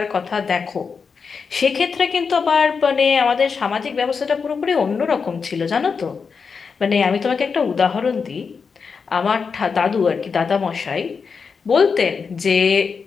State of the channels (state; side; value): quieter; right; 5.5 dB